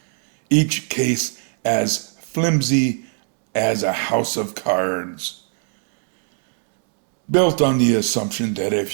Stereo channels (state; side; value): silent; left; 56 dB below the other